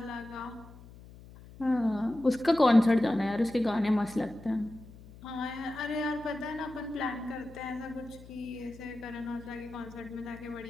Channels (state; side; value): noise; left; hum, 19 dB below the sound